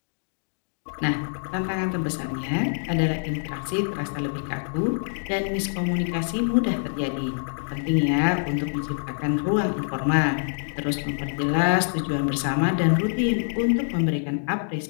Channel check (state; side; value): silent; right; digital silence